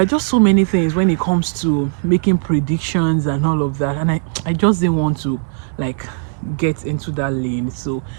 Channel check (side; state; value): left; silent; digital silence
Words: are just so many things when it comes to making predictions and all of that, and I just didn't want to like get into that lane. So